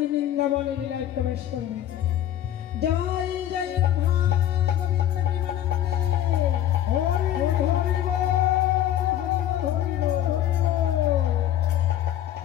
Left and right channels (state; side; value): quieter; right; 11.5 dB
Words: বৃন্দাবন বৃন্দাবনে লীলায় প্রবেশ করবে। জয় জয় রাধা গোবিন্দ প্রেমানন্দে। হরি হরি বল, হরি হরি বল।